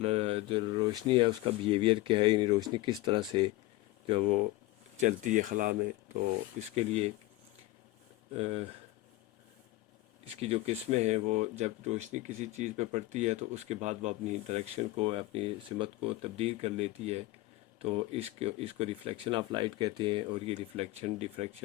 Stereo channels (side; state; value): right; quieter; 18.6 dB